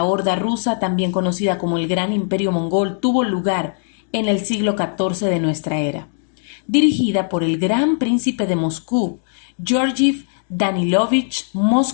Horda rusa, también conocida como el Gran Imperio Mongol, tuvo lugar en el siglo XIV de nuestra era, dirigida por el Gran Príncipe de Moscú, Georgiev Danilovich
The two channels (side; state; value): right; silent; 59 dB below the other